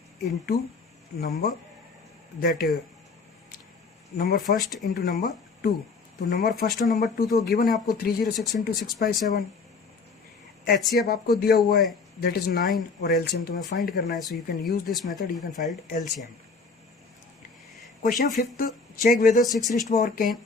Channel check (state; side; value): quieter; right; 4.5 dB